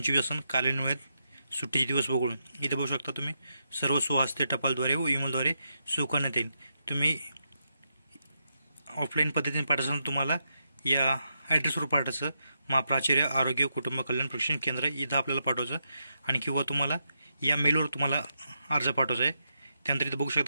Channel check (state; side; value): inverted; both; correlation -0.83